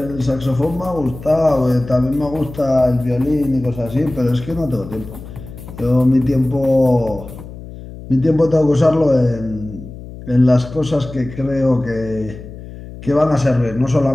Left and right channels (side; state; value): left; noise; hum, 14 dB below the sound